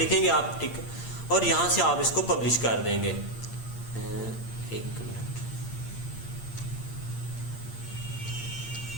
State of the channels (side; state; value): right; late; 8.7 ms